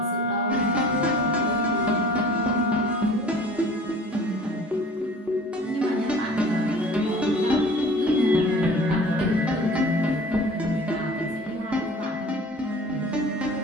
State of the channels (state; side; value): normal; both; correlation 0.45